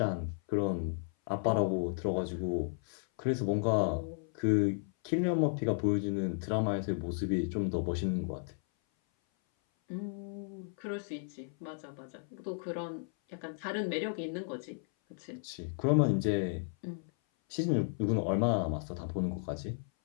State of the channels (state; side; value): silent; right; 55 dB below the other